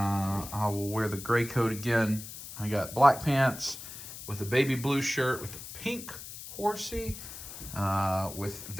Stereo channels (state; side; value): noise; left; hiss, 12 dB below the sound